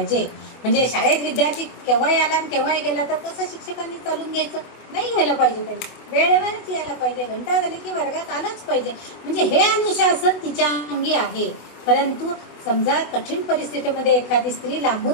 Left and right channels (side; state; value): right; late; 24 ms